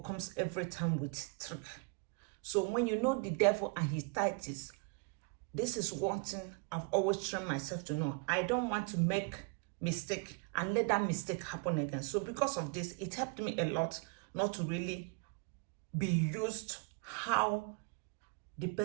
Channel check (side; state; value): left; quieter; 33.4 dB